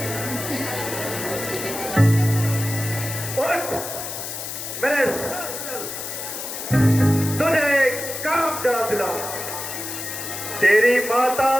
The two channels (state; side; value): noise; left; hiss, 7 dB below the sound